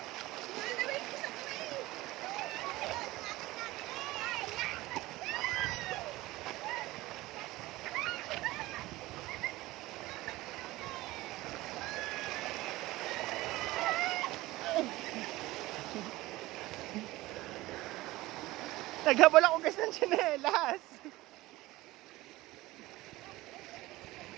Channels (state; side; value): quieter; left; 18.7 dB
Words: Naghabol ako guys ng tsinelas.